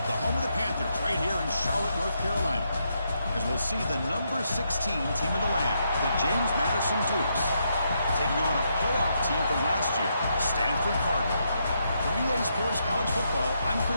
the home of the Panthers, right here in Charlotte, North Carolina. As we'll see the number 16 team of the land, the James Madison Dukes, taking on a playoff team from last year, Stanford Cardinal. For EA Sports College Football, I'm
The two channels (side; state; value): both; inverted; correlation -0.79